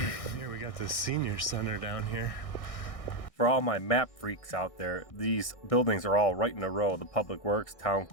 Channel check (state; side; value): late; right; 1.6 ms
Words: Here we got the senior center down here. For all my map freaks out there, these buildings are all right in a row. The Public Works, Town